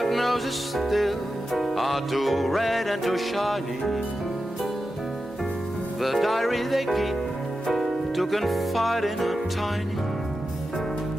noses still are too red and too shiny. The diary they keep to confide in are tiny.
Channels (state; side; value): normal; both; correlation 0.91